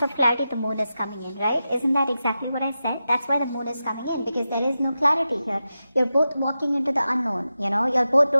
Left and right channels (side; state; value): both; inverted; correlation -0.91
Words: of clarity, the moon is coming in, right? Isn't that exactly what I said? That's why the moon is coming in, because there is no clarity here. You're both walking into the unknown, you know? You both